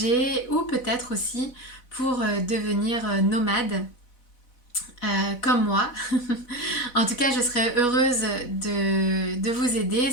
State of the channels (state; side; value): late; right; 4.1 ms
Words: ou peut-être aussi pour devenir nomade comme moi. En tout cas, je serais heureuse de vous aider.